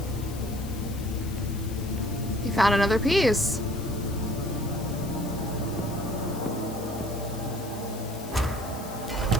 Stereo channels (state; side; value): noise; left; hiss, 16 dB below the sound